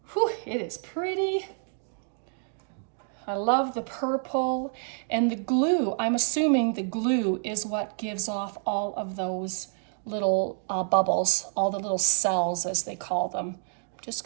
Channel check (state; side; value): silent; left; digital silence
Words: it is pretty. I love the purple and the glue. I'm assuming the glue is what gives off all of those little bubbles, all the little cells as they call them. I'm just